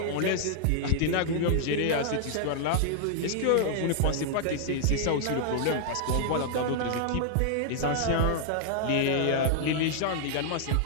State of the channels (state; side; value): different; both; correlation -0.01